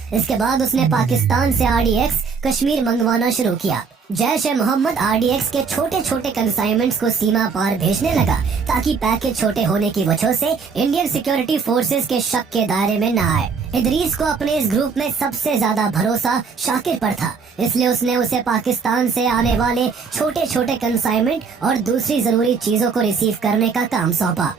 इसके बाद उसने पाकिस्तान से RDX कश्मीर मंगवाना शुरू किया। जैश-ए-मोहम्मद RDX के छोटे छोटे कंसाइनमेंट्स को सीमा पार भेजने लगा, ताकि पैकेज छोटे होने की वजह से इंडियन सिक्योरिटी फोर्सेस के शक के दायरे में न आए। इदरीस को अपने इस ग्रुप में सबसे ज्यादा भरोसा शाकिर पर था, इसलिए उसने उसे पाकिस्तान से आने वाले छोटे छोटे कंसाइनमेंट और दूसरी जरूरी चीजों को रिसीव करने का काम सौंपा।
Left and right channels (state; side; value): quieter; left; 5.4 dB